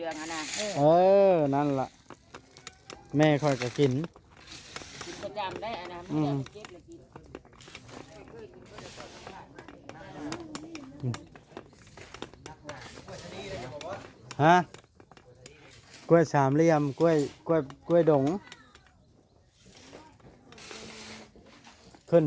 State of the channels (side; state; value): both; identical; correlation 1.00